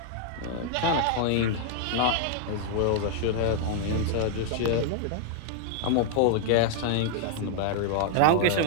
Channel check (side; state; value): both; different; correlation 0.00